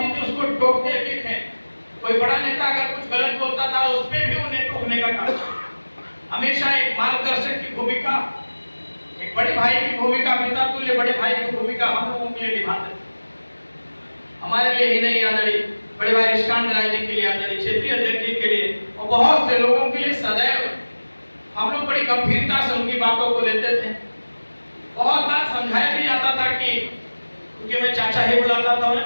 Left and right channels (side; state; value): both; inverted; correlation -1.00